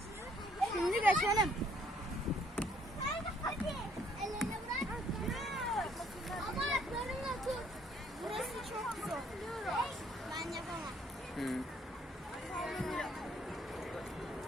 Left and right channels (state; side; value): normal; both; correlation 0.64